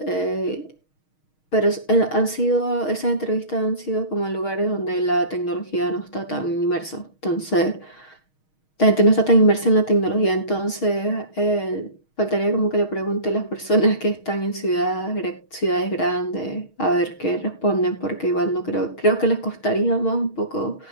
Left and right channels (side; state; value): right; late; 6.4 ms